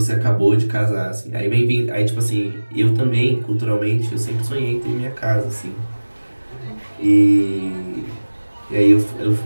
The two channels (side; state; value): both; inverted; correlation -1.00